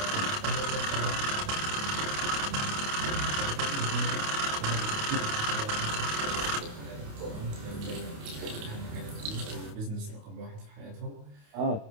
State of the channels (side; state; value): left; late; 28 ms